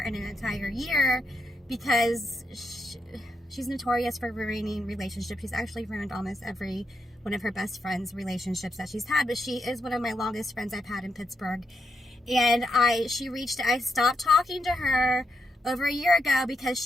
in an entire year because she's notorious for ruining relationships. She's actually ruined almost every one of her best friends' relationships that she's had, but she is one of my longest friends I've had in Pittsburgh. And I stopped talking to her over a year ago because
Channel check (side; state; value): both; normal; correlation 0.82